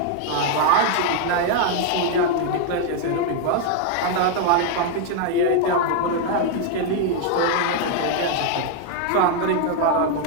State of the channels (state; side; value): different; both; correlation 0.00